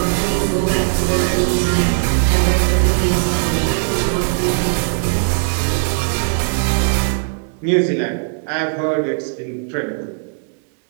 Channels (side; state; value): left; silent; digital silence